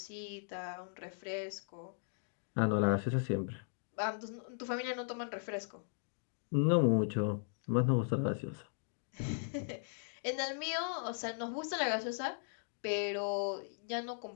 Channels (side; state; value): right; silent; digital silence